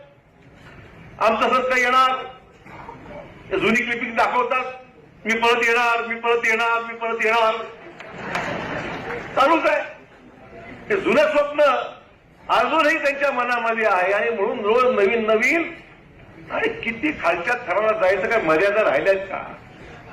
आमचं सरकार येणार, जुनी क्लिपिंग दाखवतात, मी परत येणार, मी परत येणार, मी परत येणार, चालूच आहे. हे जुनं स्वप्न अजूनही त्यांच्या मनामध्ये आहे. आणि म्हणून रोज नवीन नवीन आणि किती खालच्या थराला जायचं, काय मर्यादा राहिल्यात का?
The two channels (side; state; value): both; identical; correlation 1.00